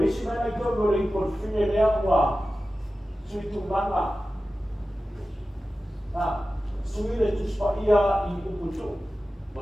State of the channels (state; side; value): normal; both; correlation 0.94